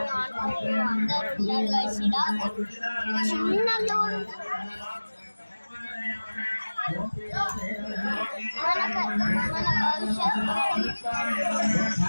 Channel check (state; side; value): inverted; both; correlation -1.00